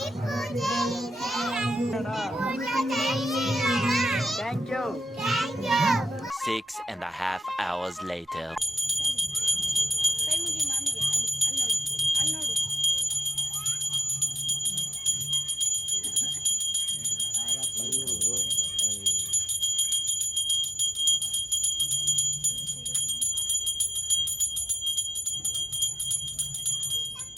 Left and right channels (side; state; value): both; normal; correlation 0.85